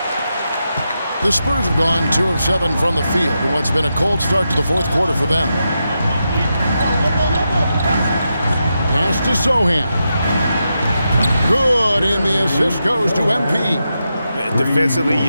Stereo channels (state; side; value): inverted; both; correlation -0.86